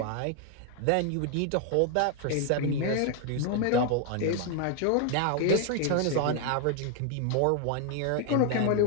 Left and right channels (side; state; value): both; different; correlation 0.00